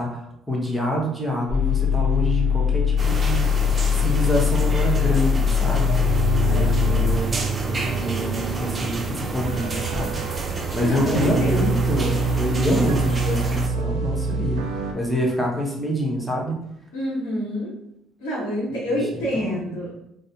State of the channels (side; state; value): both; normal; correlation 0.65